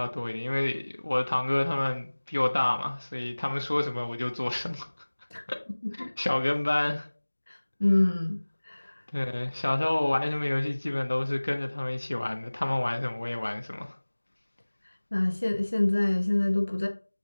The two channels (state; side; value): inverted; both; correlation -1.00